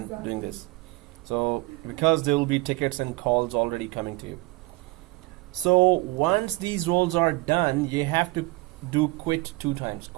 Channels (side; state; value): left; quieter; 22.0 dB